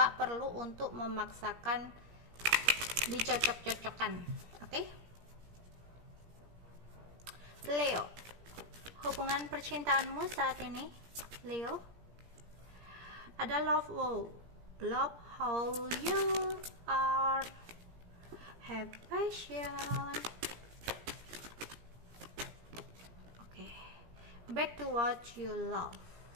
perlu untuk memaksakan dicocok-cocokkan. Oke, Leo, hubungan percintaanmu saat ini, Leo, ada love how you are, have passion. Back to what you love.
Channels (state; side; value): late; left; 17 ms